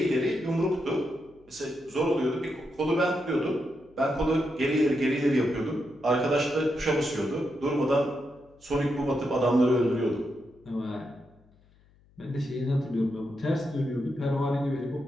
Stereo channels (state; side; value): noise; left; hum, 30 dB below the sound